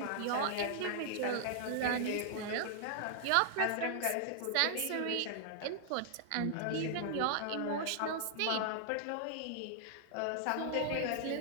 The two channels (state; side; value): different; both; correlation -0.01